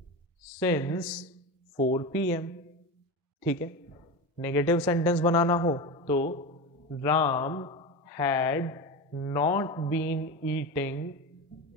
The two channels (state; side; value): normal; both; correlation 0.24